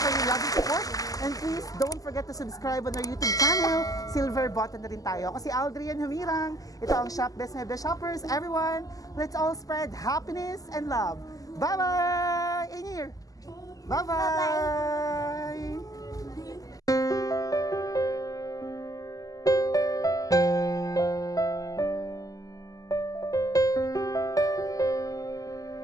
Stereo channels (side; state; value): right; late; 0.17 ms